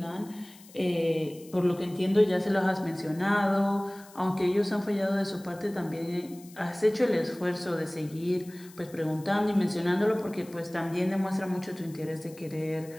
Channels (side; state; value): left; noise; hiss, 22 dB below the sound